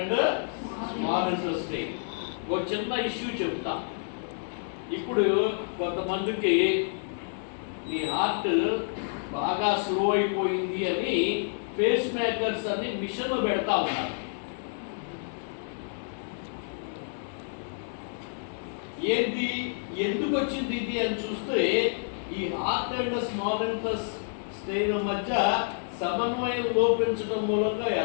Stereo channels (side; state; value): right; silent; digital silence